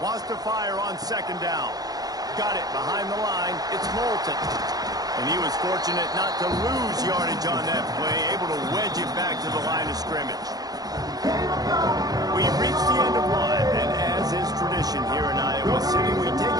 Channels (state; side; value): late; left; 0.19 ms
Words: to fire on 2nd down. Got it behind the line. It's Moulton. And he was fortunate not to lose yardage on that play, able to wedge it back to the line of scrimmage. We've reached the end of one, and as is tradition here in Iowa City, we take